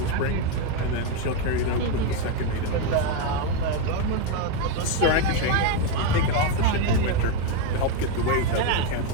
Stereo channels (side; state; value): both; different; correlation 0.03